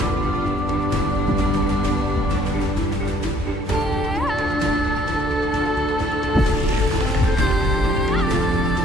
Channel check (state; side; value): normal; both; correlation 0.61